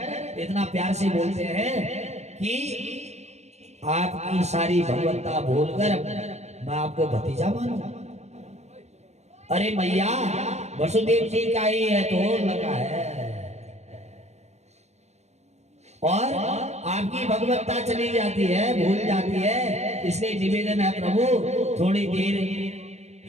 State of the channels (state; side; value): late; left; 0.32 ms